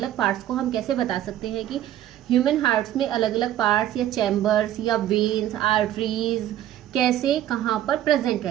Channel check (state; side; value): quieter; left; 12.3 dB